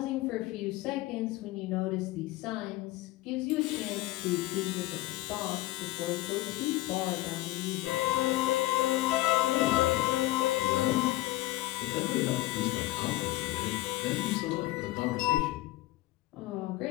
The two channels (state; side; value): quieter; right; 18.1 dB